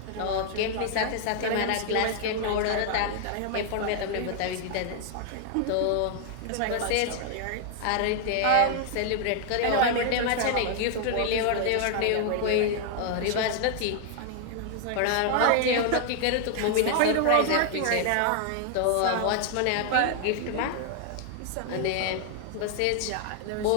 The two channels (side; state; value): both; different; correlation 0.00